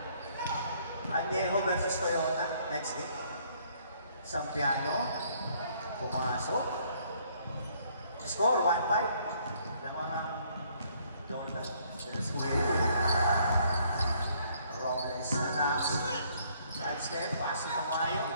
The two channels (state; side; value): inverted; both; correlation -0.65